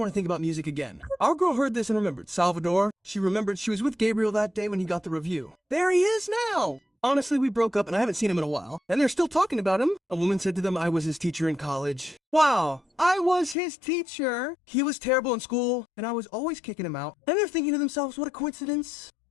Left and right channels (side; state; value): right; drops out; at 13.6 s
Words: to think about music again. Our girl heard this and remembered. Salvador, she remembered she was with Gabriel that day when he got the review. There he is now. Honestly, we broke up and I haven't seen him in a while, and they're still talking about him. A woman said to them I was his teacher in college. Wow, I was his teacher. He was terrible in school, and I was always kicking him out. And they're thinking to themselves, what a coincidence.